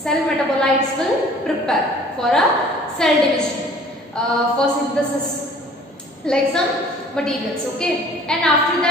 metabolites will prepare for a cell division, for synthesis like some materials. Okay, and after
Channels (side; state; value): both; normal; correlation 0.51